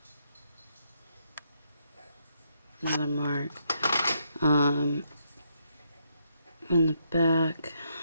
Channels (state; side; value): inverted; both; correlation -0.77